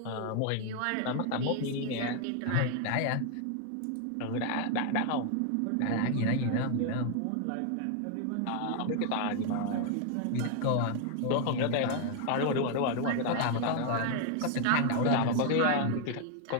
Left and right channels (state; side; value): different; both; correlation 0.00